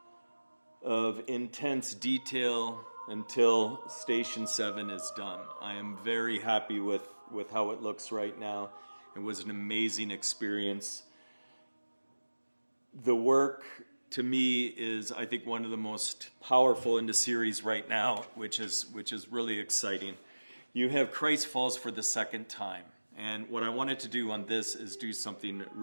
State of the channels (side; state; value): both; inverted; correlation -1.00